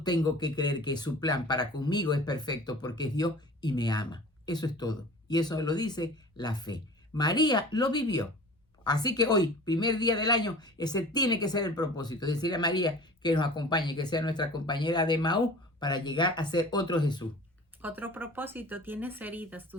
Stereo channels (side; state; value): both; normal; correlation 0.41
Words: que creer que su plan para conmigo es perfecto porque es Dios y me ama. Eso es todo. Y eso lo dice la fe. María lo vivió. Así que hoy, primer día del año, ese tiene que ser el propósito. Decirle a María que nos acompañe, que sea nuestra compañera de Maús para llegar a ser otro Jesús. Otro propósito, tienes heridas,